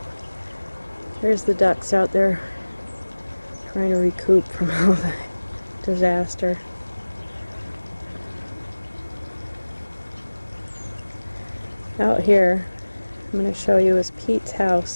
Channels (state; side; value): inverted; both; correlation -1.00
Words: There's the ducks out there trying to recoup from all the disaster. Out here, I'm going to show you is Pete's